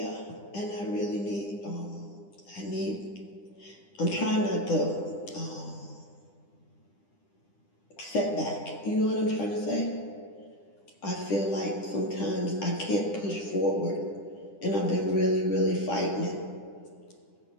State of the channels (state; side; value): late; right; 10 ms